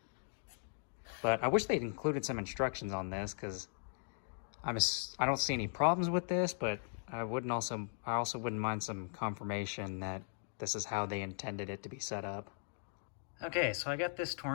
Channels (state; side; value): silent; right; digital silence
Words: But I wish they'd included some instructions on this, because I don't see any problems with this, but I also wouldn't mind some confirmation that this is how they intended it to be set up. Okay, so I got this